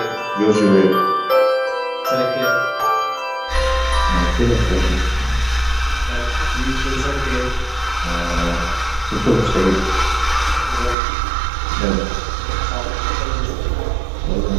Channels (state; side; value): drops out; left; at 11.0 s